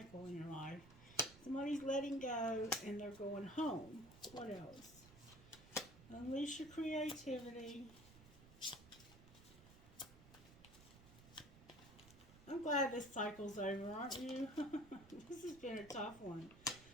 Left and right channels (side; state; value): right; noise; rumble, 19 dB below the sound